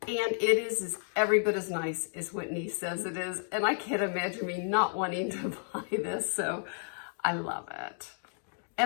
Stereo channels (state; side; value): silent; right; 57 dB below the other